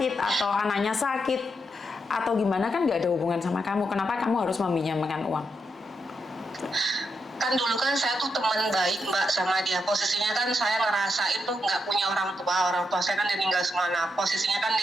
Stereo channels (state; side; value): normal; both; correlation 0.83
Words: atau anaknya sakit atau gimana, kan nggak ada hubungan sama kamu, kenapa kamu harus meminjamkan uang? Kan dulu kan saya tuh teman baik Mbak sama dia, posisinya kan saya ngerasain tuh nggak punya orang tua saya kan meninggal semua. Nah posisinya kan